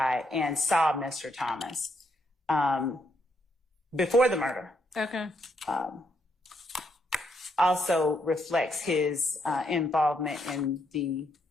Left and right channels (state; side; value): normal; both; correlation 0.76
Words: and saw Mr. Thomas before the murder. Okay. Also reflects his involvement in the